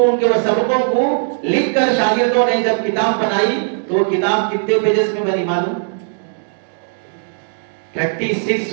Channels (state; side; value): silent; left; digital silence